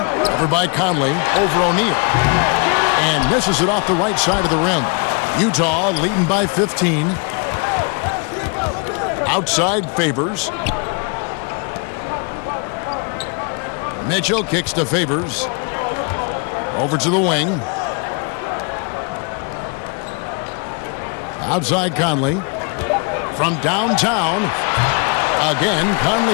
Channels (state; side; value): quieter; right; 35.1 dB